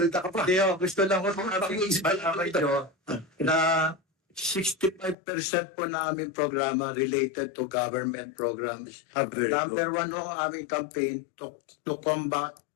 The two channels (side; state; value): right; drops out; at 5.2 s